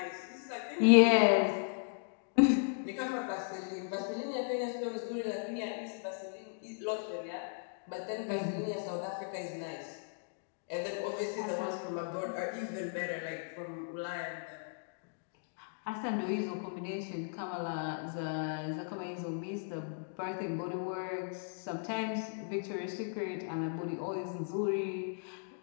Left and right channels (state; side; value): silent; right; digital silence